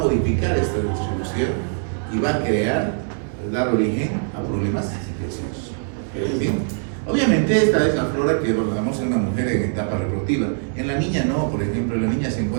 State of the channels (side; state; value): left; silent; digital silence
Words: esta distribución y va a dar origen a problemas infecciosos. ¿Sí? Obviamente esta es la flora que abordamos en una mujer en etapa reproductiva. En la niña no, por ejemplo, en la niña se